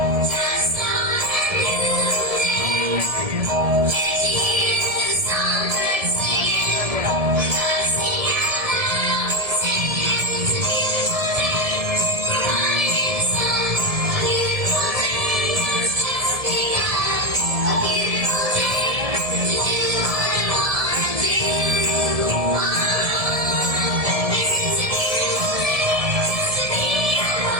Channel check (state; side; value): late; left; 1.7 ms